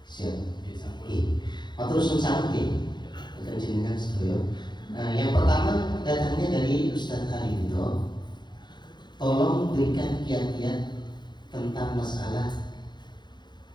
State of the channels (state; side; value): late; right; 0.21 ms